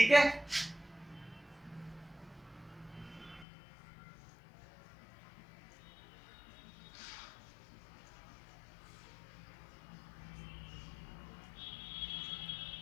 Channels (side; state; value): right; drops out; at 3.5 s